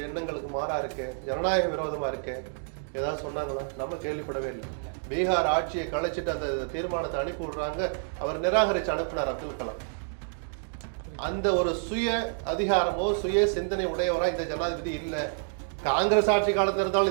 எண்ணங்களுக்கு மாறா இருக்கு, ஜனநாயக விரோதமா இருக்கு, ஏதாவது சொன்னாங்களா? நம்ம கேள்விப்படவே இல்லை. பீகார் ஆட்சியை கலைச்சிட்டு அந்த தீர்மானத்தை அனுப்பி விடுறாங்க, அவர் நிராகரிச்சு அனுப்பினார் அப்துல் கலாம். அந்த ஒரு சுய அதிகாரமோ சுய சிந்தனை உடையவரா இந்த ஜனாதிபதி இல்ல. காங்கிரஸ் ஆட்சி காலத்துல இருந்தாலும்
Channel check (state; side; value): silent; left; digital silence